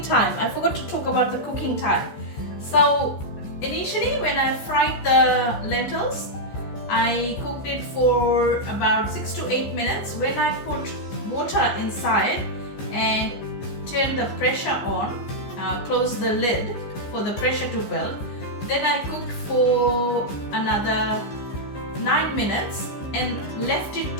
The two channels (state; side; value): late; right; 14 ms